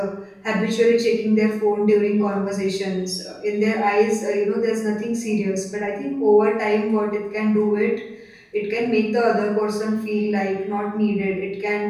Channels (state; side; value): identical; both; correlation 1.00